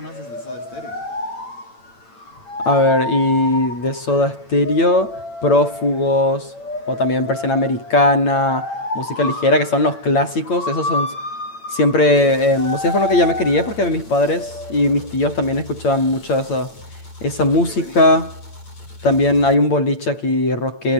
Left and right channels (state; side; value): late; right; 8.8 ms